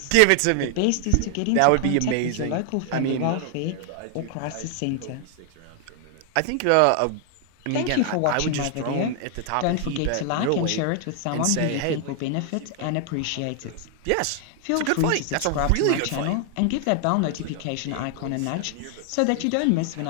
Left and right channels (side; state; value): both; different; correlation 0.00